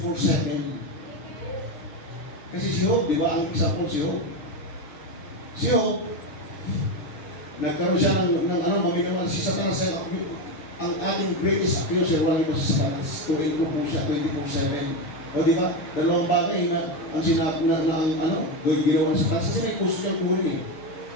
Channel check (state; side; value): late; right; 6.4 ms